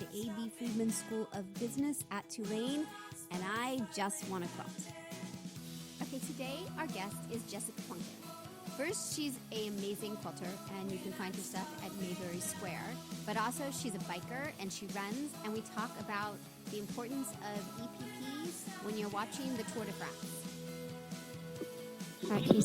A.B. Friedman School of Business at Tulane, and I just want to quilt. Okay, today our guest is Jessica Plunkett. First, she's an amazing quilter, and you can find her stuff at Mayberry Square. But also, she's a biker, and she runs, and we talk about the importance of EPPs when you're watching the Tour de France. All right, can you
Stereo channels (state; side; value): identical; both; correlation 1.00